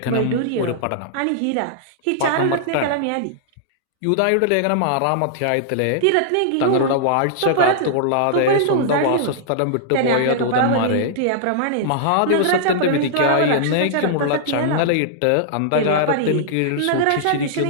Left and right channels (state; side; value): different; both; correlation -0.01